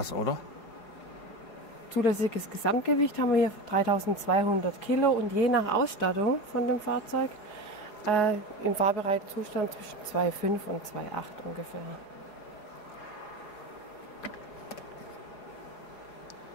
oder? Zulässiges Gesamtgewicht haben wir hier 3200 Kilo und je nach Ausstattung von dem Fahrzeug im fahrbereiten Zustand zwischen 2,5 und 2,8 ungefähr.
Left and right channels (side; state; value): right; late; 4.8 ms